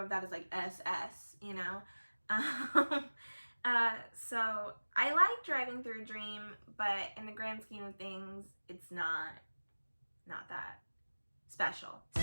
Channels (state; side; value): inverted; both; correlation -1.00